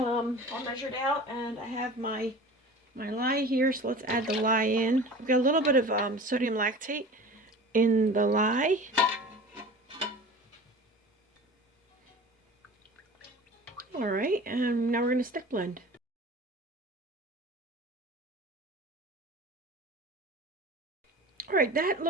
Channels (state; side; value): normal; both; correlation 0.39